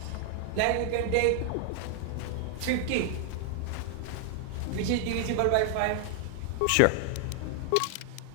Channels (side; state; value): both; different; correlation 0.00